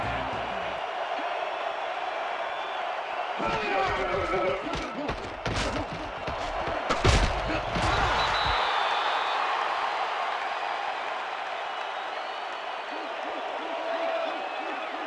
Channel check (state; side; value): identical; both; correlation 1.00